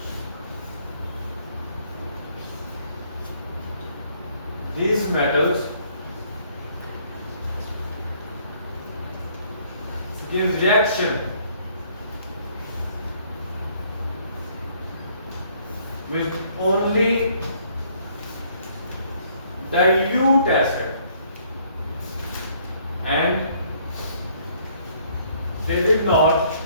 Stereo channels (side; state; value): both; inverted; correlation -0.63